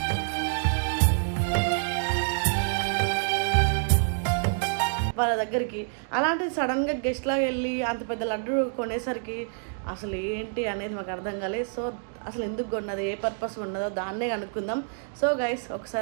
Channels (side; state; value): left; silent; digital silence